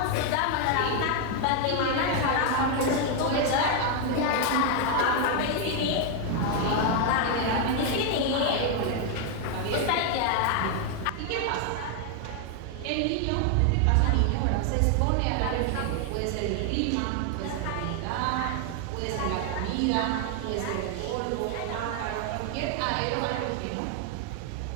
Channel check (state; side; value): different; both; correlation 0.00